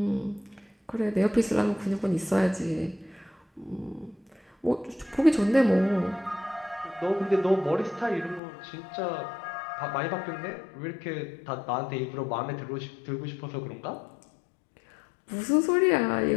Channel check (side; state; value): right; drops out; at 8.4 s